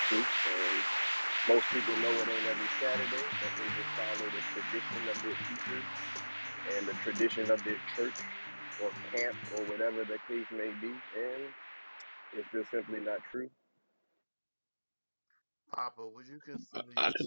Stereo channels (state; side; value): inverted; both; correlation -1.00